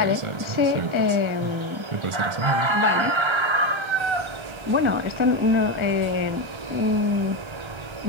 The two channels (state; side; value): late; left; 1.4 ms